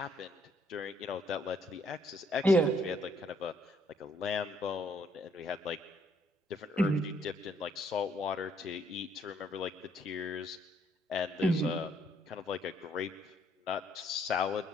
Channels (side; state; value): both; normal; correlation 0.68